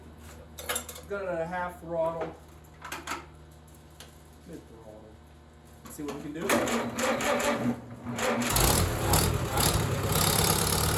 Got it at a half throttle. Mid throttle. See what we can do. The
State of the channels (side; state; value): both; identical; correlation 1.00